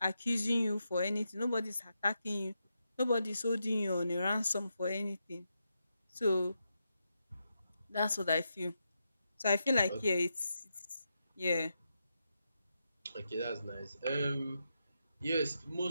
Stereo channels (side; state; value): both; inverted; correlation -0.85